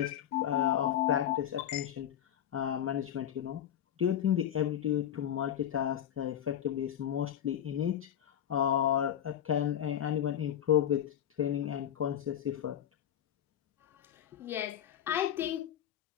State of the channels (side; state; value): right; quieter; 10.3 dB